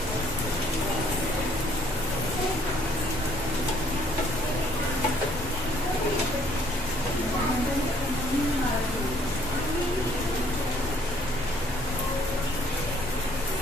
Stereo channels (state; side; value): normal; both; correlation 0.63